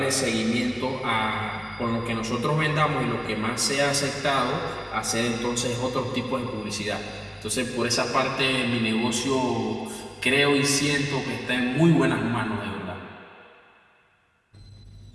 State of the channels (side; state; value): both; identical; correlation 1.00